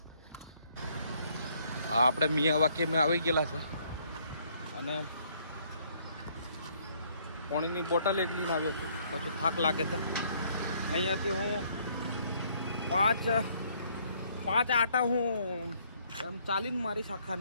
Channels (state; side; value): inverted; both; correlation -0.66